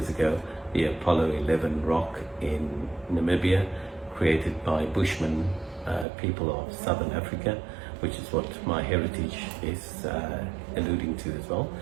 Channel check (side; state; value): left; drops out; at 6.1 s